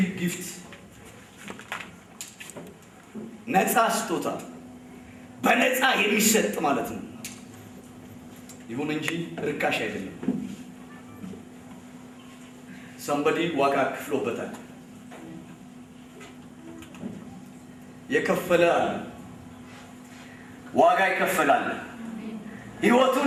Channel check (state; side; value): identical; both; correlation 1.00